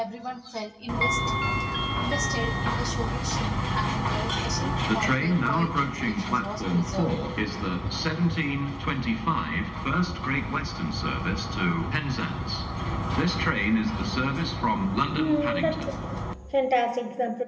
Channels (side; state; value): both; identical; correlation 1.00